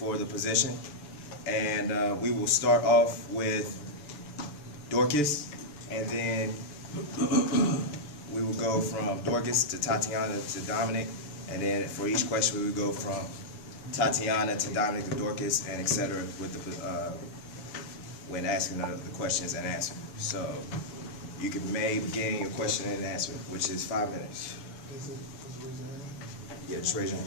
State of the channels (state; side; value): late; right; 6.8 ms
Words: the position. And we will start off with Dorcas, and then we will go from Dorcas to Tatiana to Dominic, and then for each question we will go from Tatiana to Dominic to Dorcas, and etc. with the when asking the questions and answer. So you can begin your question and answer, which is 5 minutes. Yeah, just raise your